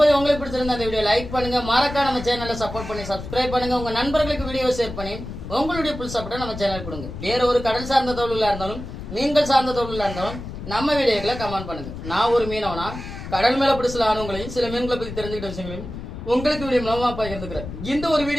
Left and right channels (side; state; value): left; noise; rumble, 10 dB below the sound